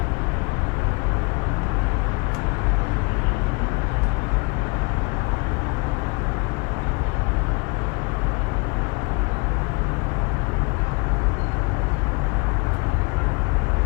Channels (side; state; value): right; quieter; 29.7 dB